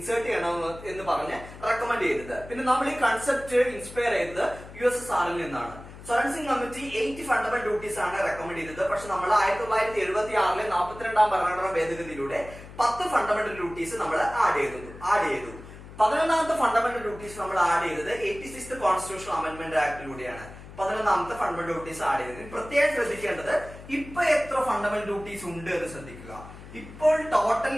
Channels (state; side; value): noise; left; hum, 16 dB below the sound